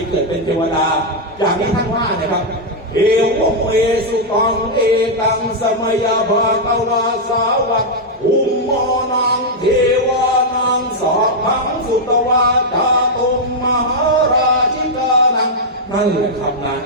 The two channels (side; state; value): both; normal; correlation -0.03